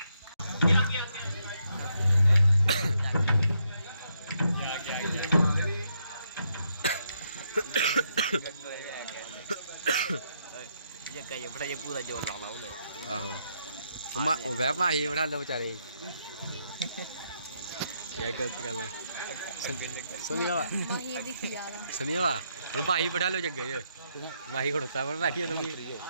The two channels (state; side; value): inverted; both; correlation -0.77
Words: क्या जग्गा ये बड़ा ये पूरा जोर लाना उन्हें आहो वह माही बना लो बेचारे ये गलत गल है सुनिया सुनिया और माही बैठा लो जगह ये माही खड़ोता है बैठी है तुम